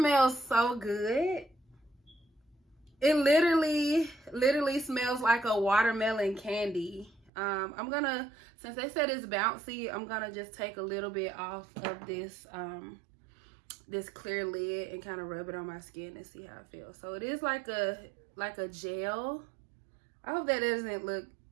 so good. It literally smells like a watermelon candy. I'm gonna, since they said it's bouncy, I'm gonna just take a little bit off of this this clear lid and kind of rub it on my skin and see how it feels. So it is like a gel. I hope that doesn't look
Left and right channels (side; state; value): left; drops out; at 7.3 s